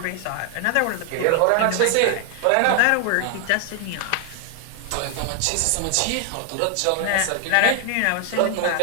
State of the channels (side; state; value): both; different; correlation 0.00